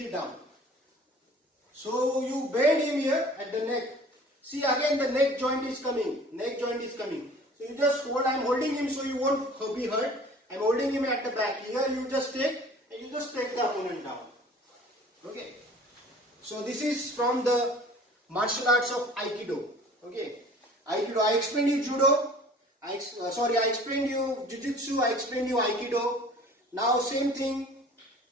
down. So you bend him here at the neck. See again the neck joint is coming. Neck joint is coming. So you just hold. I am holding him so you won't be hurt. I am holding him at the back. Here you just take and you just take the opponent down. Okay. So this is from the martial arts of Aikido. Okay. Aikido. I explained you Judo. I explained you Jiu-Jitsu. I explained you Aikido. Now same thing.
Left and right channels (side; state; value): both; normal; correlation 0.48